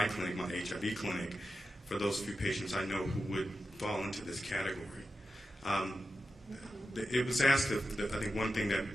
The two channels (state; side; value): normal; both; correlation 0.90